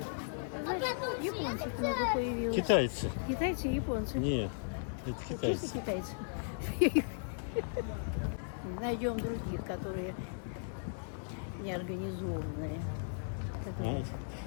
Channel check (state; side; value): silent; right; digital silence